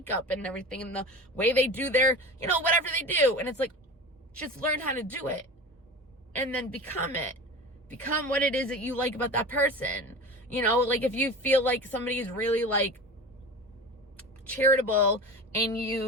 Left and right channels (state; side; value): normal; both; correlation 0.32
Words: and everything, and the way they do their, you know, whatever they do. And it's like, just learn how to do it and then become it. Become what it is that you like about that person. You know, like if you feel like somebody is really like charitable and